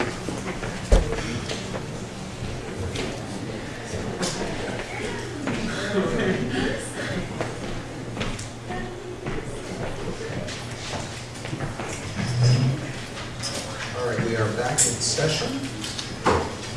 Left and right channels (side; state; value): both; identical; correlation 1.00